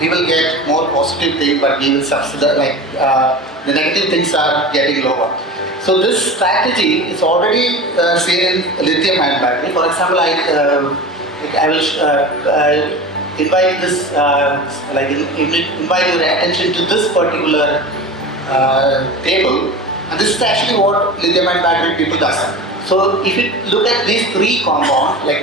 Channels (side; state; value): both; normal; correlation 0.32